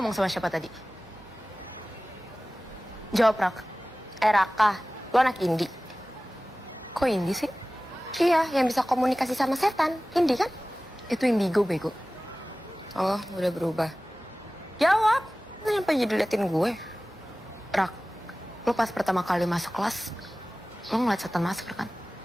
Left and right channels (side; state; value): both; normal; correlation 0.97